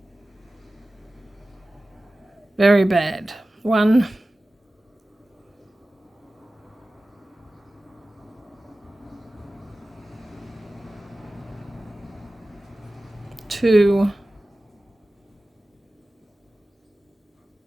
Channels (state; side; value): normal; both; correlation 0.96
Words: Very bad. 1, 2,